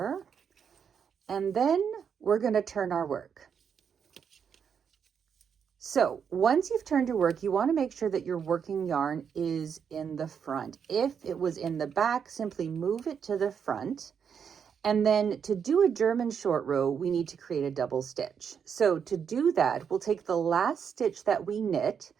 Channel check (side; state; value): left; quieter; 7.2 dB